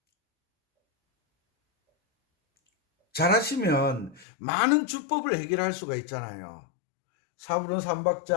잘하시면 많은 주법을 해결할 수가 있잖아요. 4분의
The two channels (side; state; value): right; drops out; at 4.2 s